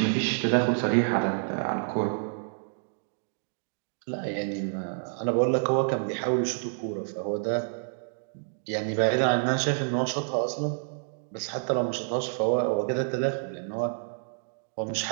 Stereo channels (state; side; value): silent; left; digital silence